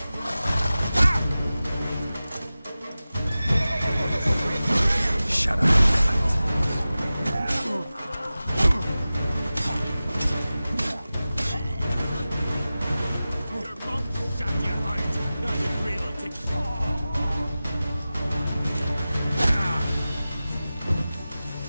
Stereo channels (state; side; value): inverted; both; correlation -0.96